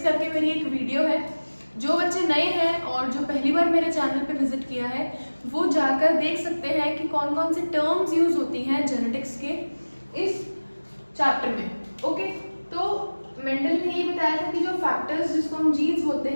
करके मेरी एक वीडियो है। जो बच्चे नए हैं और जो पहली बार मेरे चैनल पे विजिट किया है वो जाकर देख सकते हैं कि कौन कौन सी टर्म्स यूज होती हैं जेनेटिक्स के इस चैप्टर में। ओके, तो मेंडल ने ये बताया था कि जो फैक्टर्स जिसको हम जीन्स बोलते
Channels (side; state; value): both; inverted; correlation -1.00